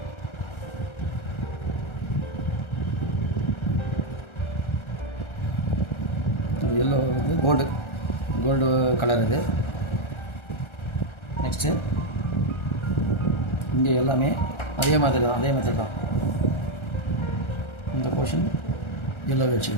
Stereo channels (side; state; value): right; late; 1.4 ms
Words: எல்லோ வந்து கோல்டு கலர் இது. நெக்ஸ்ட்டு இங்கே எல்லாமே அதே மாதிரி தான், அதே மெத்தட் தான். இந்த போர்ஷன் எல்லோ